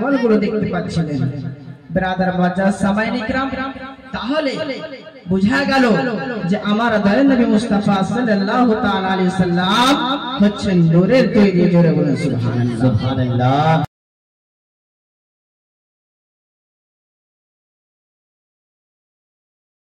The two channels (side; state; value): both; identical; correlation 1.00